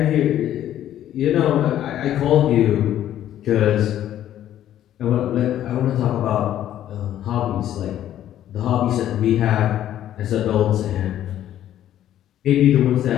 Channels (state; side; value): quieter; right; 11.7 dB